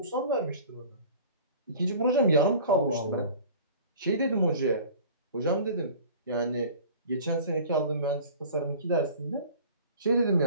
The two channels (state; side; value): inverted; both; correlation -0.43